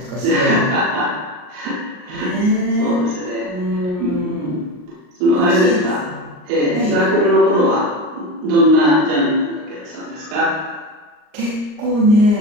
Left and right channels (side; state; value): left; late; 39 ms